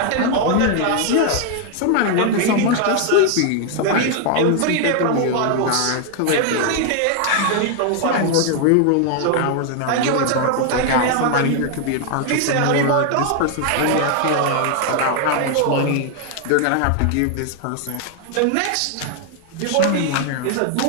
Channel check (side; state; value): both; different; correlation 0.00